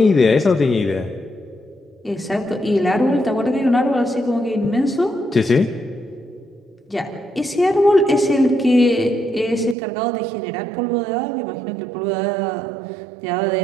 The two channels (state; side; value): drops out; left; at 9.8 s